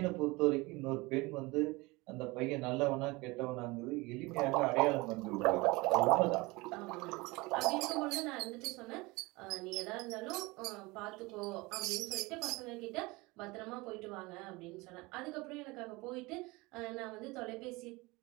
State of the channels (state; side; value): quieter; left; 23.4 dB